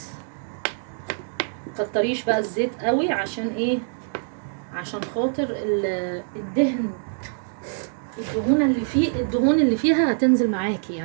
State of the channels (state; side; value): silent; left; digital silence